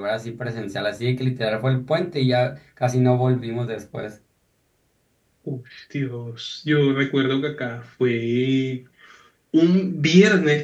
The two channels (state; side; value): identical; both; correlation 1.00